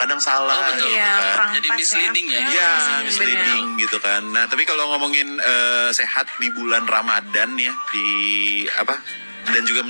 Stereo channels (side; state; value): both; inverted; correlation -1.00